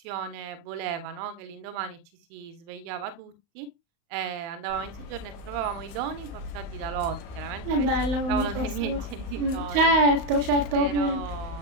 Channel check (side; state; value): left; late; 35 ms